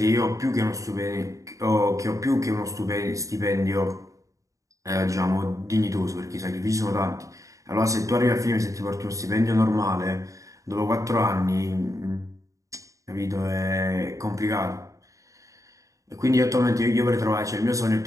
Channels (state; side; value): late; left; 0.16 ms